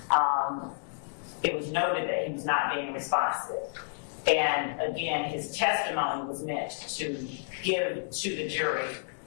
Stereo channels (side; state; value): right; silent; digital silence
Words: It was noted that he was not being responsive. And again, his testimony was meant to give to the jury